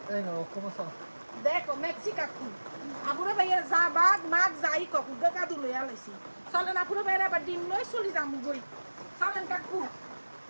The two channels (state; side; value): inverted; both; correlation -1.00